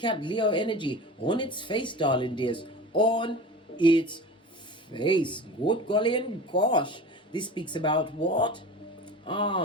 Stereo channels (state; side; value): normal; both; correlation 0.34